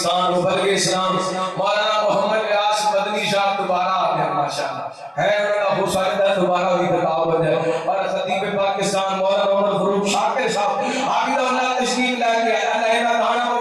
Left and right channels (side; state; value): both; identical; correlation 1.00